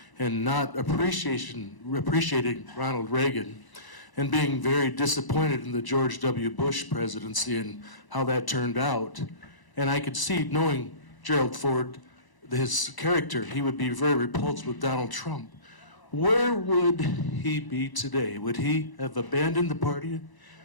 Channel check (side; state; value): right; late; 1.0 ms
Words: and not appreciating Ronald Reagan, and being very disappointed in the George W. Bush presidency and how that turned out. And I could see, knowing Gerald Ford, his character, he would be very repulsed with Donald Trump. Where would he be today? Would he have abandoned the party?